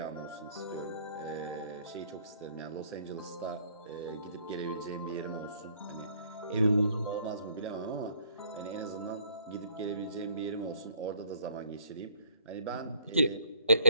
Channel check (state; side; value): inverted; both; correlation -0.61